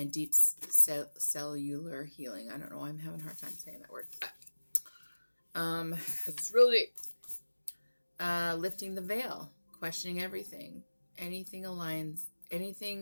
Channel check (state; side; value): inverted; both; correlation -1.00